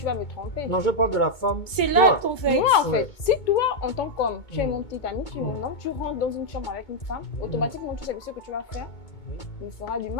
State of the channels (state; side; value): late; right; 2.2 ms